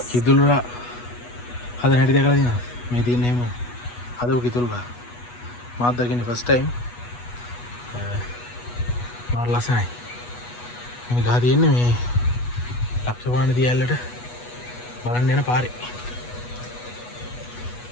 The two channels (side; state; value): right; late; 8.2 ms